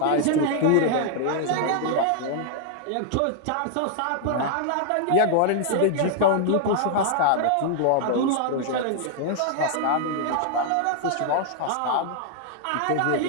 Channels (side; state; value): both; different; correlation 0.00